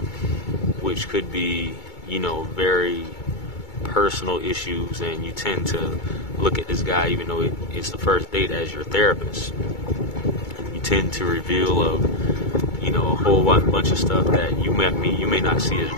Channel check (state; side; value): late; right; 2.2 ms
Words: which could be, very personal issues, and you tend to look at this guy, even though it's the first date, as your therapist. You tend to reveal a whole bunch of stuff that you may not see